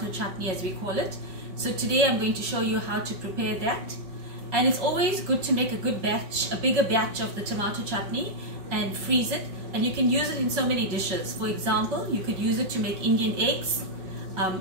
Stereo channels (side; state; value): left; late; 5.3 ms